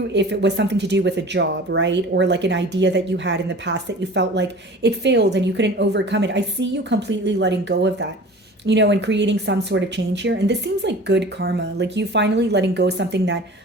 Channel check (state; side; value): normal; both; correlation 0.41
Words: it was something to do with a job, right? Or like an idea that you had in the past that you felt like it failed and you couldn't overcome it. I see you completely letting go of that, and creating some sort of change here. And this seems like good karma, like you finally letting go of something that,